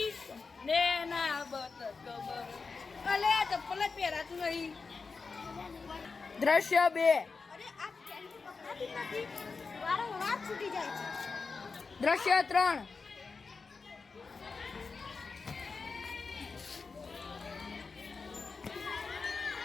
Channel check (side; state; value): right; quieter; 4.6 dB